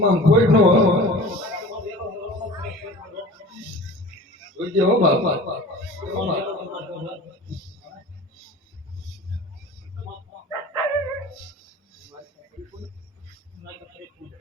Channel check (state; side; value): normal; both; correlation 0.40